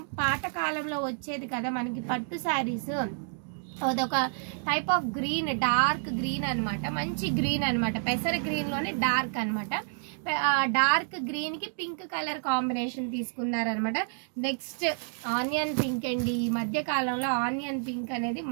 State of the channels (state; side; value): silent; left; 58 dB below the other